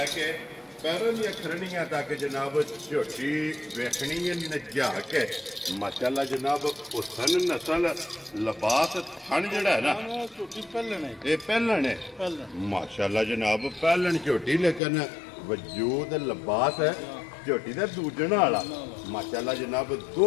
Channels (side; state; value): right; drops out; at 14.8 s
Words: ਕੇ ਪੈਰਾਂ ਦੀਆਂ ਖਰਣੀਆਂ ਤੱਕ ਜਨਾਬ ਝੋਟੀ ਵੇਖਣੀ ਹੈ ਨਜਾ ਕੇ ਮਾਸ਼ਾਅੱਲਾ ਜਨਾਬ ਹੁਸਨ ਨਸਲ ਲਿਬਾਸ ਥਣ ਜਿਹੜਾ ਹੈ ਨਾ ਝੋਟੀ ਪਹਿਲਣ ਹੈ ਇਹ ਪਹਿਲਣ ਹੈ ਮਾਸ਼ਾਅੱਲਾ ਜਨਾਬ ਪਹਿਲਣ ਝੋਟੀ ਲੇਕਿਨ ਵਜੂਦ ਲਿਬਾਸ ਹੈ ਝੋਟੀ ਦਾ ਦੂਜਣ ਵਾਲਾ ਮਾਸ਼ਾਅੱਲਾ ਜਨਾਬ